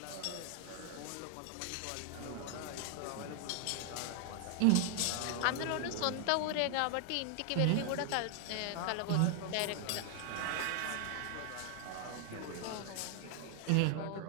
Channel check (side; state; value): both; different; correlation 0.00